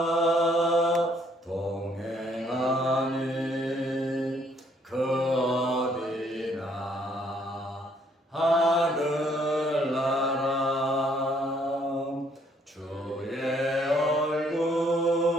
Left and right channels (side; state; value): both; normal; correlation 0.66